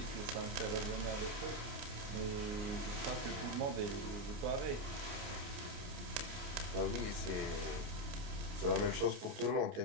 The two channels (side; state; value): left; late; 29 ms